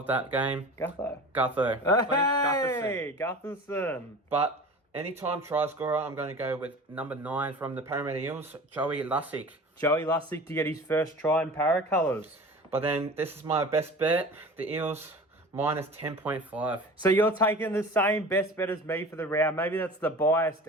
that game, Gutho. Hey, Gutherson. But anytime try scorer, I'm going to go with number 9 from the Parramatta Eels, Joey Lussick. Joey Lussick to get his first try in para colours. But then this is my best bet, the Eels minus 10.5. So you're taking the same best bet as me for the round. Maybe that's the biased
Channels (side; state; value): both; normal; correlation 0.38